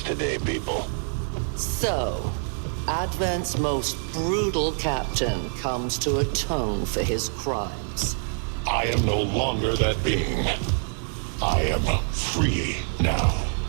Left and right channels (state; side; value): silent; left; 61 dB below the other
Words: today, people. So, Advent's most brutal captain comes to atone for his crimes. I am no longer that being. I am free now.